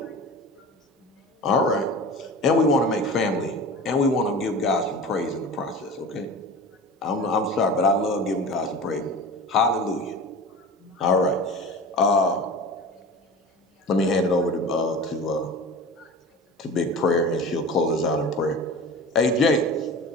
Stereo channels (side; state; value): both; normal; correlation 0.35